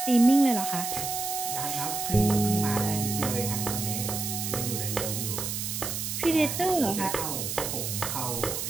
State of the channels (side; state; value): right; noise; hiss, 3 dB below the sound